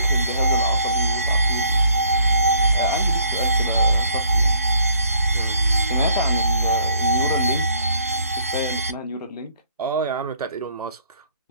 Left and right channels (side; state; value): both; inverted; correlation -0.62